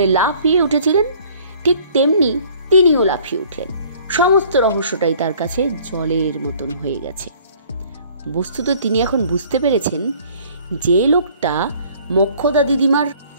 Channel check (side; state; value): both; inverted; correlation -0.55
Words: লাফিয়ে উঠেছিলেন, ঠিক তেমনি তিনিও লাফিয়ে উঠলেন। সমস্ত রহস্যটাই তার কাছে জলের মতন হয়ে গেছে। বস্তুত তিনি এখন বুঝতে পেরেছেন যে লোকটা মোক্ষদা দিদিমার